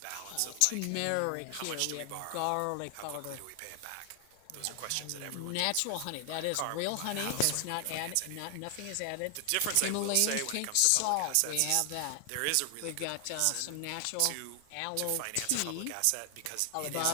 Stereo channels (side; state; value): both; different; correlation 0.00